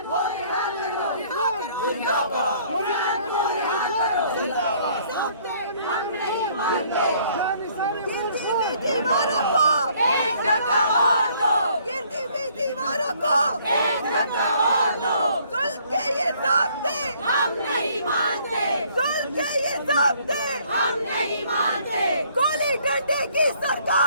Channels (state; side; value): inverted; both; correlation -0.61